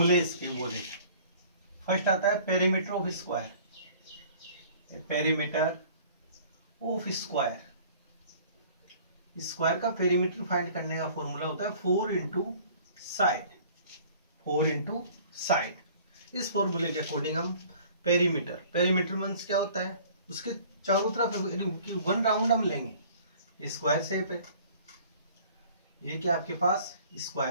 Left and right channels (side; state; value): both; inverted; correlation -0.51